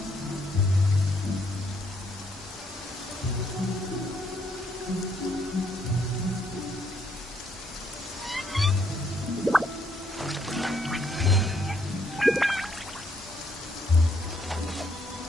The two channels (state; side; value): normal; both; correlation 0.71